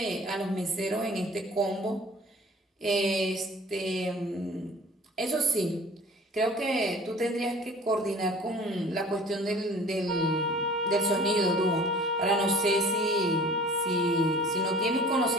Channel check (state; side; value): normal; both; correlation 0.47